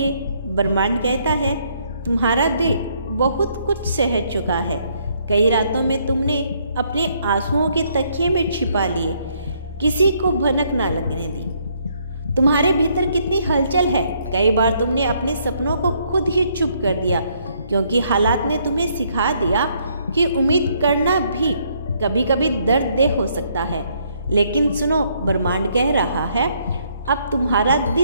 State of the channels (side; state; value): both; inverted; correlation -0.69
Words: ब्रह्मांड कहता है, तुम्हारा दिल बहुत कुछ सह चुका है। कई रातों में तुमने अपने आंसुओं के तकिए में छिपा लिए, किसी को भनक ना लगने दी। तुम्हारे भीतर कितनी हलचल है। कई बार तुमने अपने सपनों को खुद ही चुप कर दिया, क्योंकि हालात ने तुम्हें सिखा दिया कि उम्मीद करना भी कभी कभी दर्ददेह हो सकता है। लेकिन सुनो, ब्रह्मांड कह रहा है, अब तुम्हारा